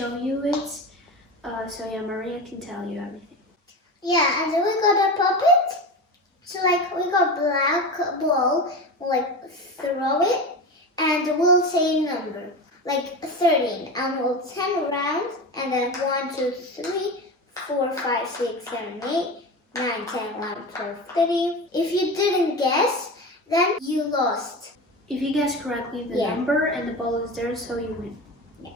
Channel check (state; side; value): normal; both; correlation 0.26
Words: you it. So yeah, Maria can tell you everything. Yeah, and then we got a Popit. So we got black ball, throw it, and we'll say a number, 13, and we'll 10 around, and then 1, 2, 3, 4, 5, 6, 7, 8, 9, 10, 11, 12, 13. If you didn't guess, then you lost. If you guess correctly the number and the ball is there, so you win. Yeah.